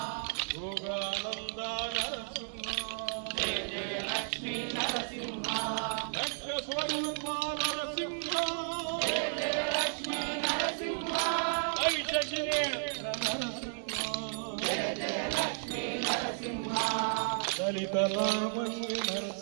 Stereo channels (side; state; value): left; silent; digital silence